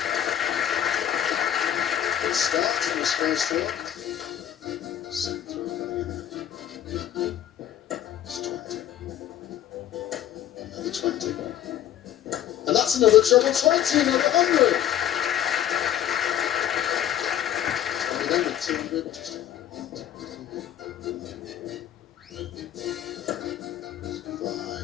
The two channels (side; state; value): right; quieter; 10.9 dB